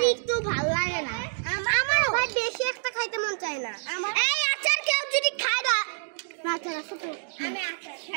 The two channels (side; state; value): left; silent; digital silence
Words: একটু ভালো লাগে না আমারও ভাই বেশি একটা খাইতে মন চায় না এই আচার কেউ যদি খায় না আচার আছে তো আমি আচার